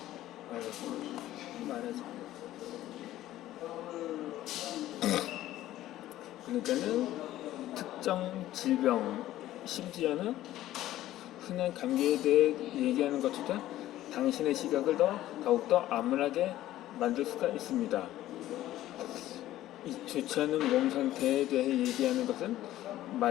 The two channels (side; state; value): right; quieter; 14.3 dB